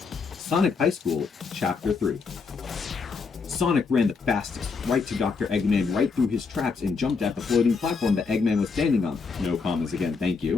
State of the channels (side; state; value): right; quieter; 4.9 dB